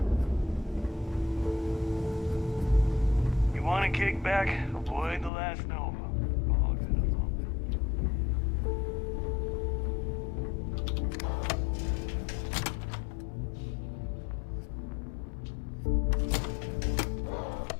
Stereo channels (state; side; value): drops out; right; at 5.3 s